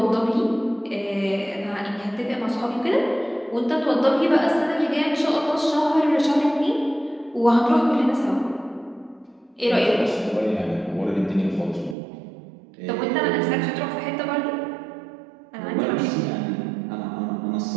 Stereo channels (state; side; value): drops out; left; at 12.0 s